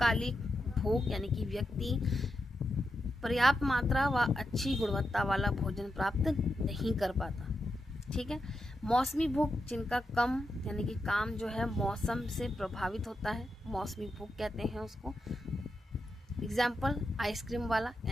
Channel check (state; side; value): normal; both; correlation 0.87